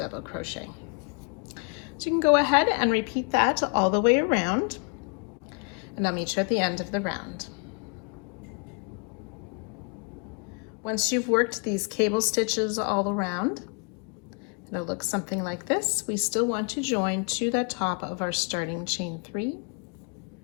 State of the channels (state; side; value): quieter; right; 36.8 dB